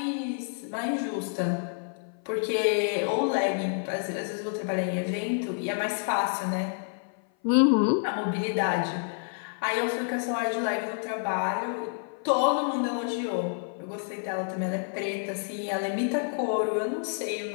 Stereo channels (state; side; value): silent; right; 56 dB below the other